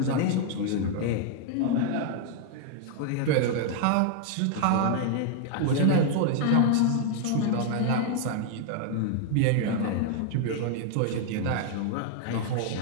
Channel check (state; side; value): different; both; correlation 0.00